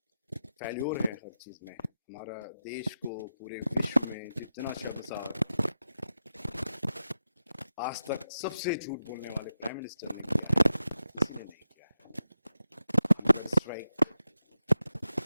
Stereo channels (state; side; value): inverted; both; correlation -0.90